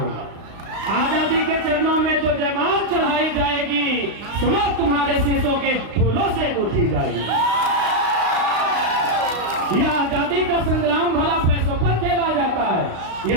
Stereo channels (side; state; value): left; late; 35 ms